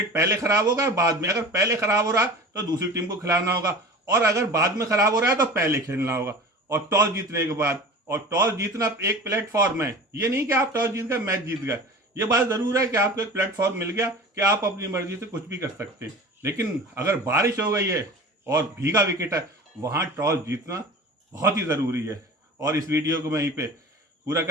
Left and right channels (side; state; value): both; normal; correlation 0.37